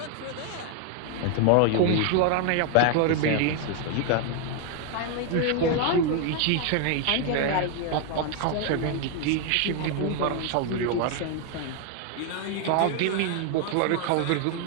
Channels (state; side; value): different; both; correlation 0.01